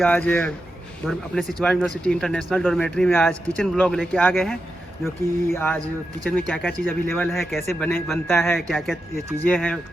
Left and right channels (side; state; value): both; normal; correlation 0.88